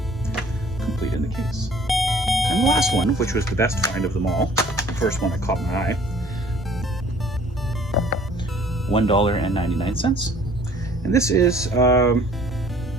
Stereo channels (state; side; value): normal; both; correlation 0.54